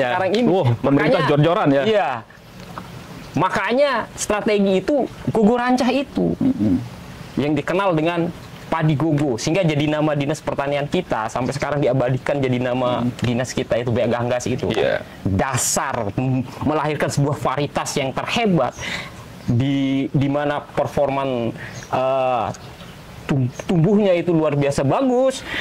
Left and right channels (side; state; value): both; identical; correlation 1.00